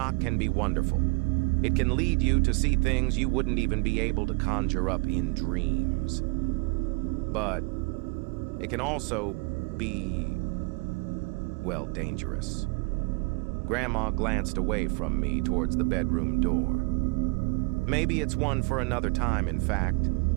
can be wonderful. It can lead you to see things you wouldn't even be able to conjure up in dreams. But it can also be, well, dangerous. Grandma glanced away from me towards the bedroom door. Maybe it's one for another time, in fact.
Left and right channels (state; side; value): quieter; left; 30.8 dB